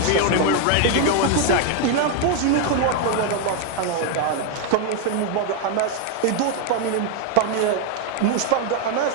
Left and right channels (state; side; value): different; both; correlation 0.01